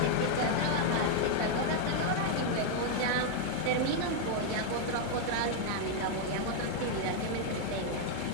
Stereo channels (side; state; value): both; different; correlation 0.00